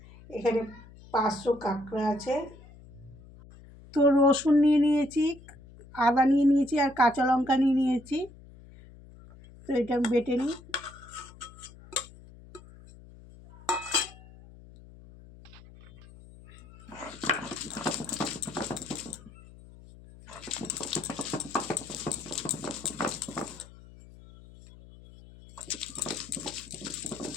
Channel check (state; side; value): noise; left; hum, 20 dB below the sound